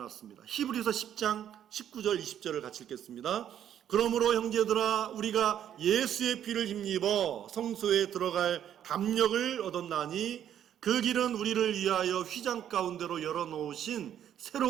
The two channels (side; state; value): left; quieter; 10.1 dB